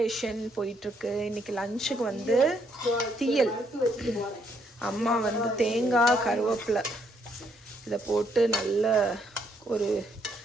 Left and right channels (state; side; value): normal; both; correlation 0.72